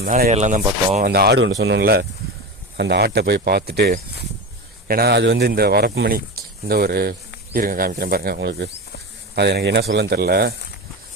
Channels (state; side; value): normal; both; correlation 0.24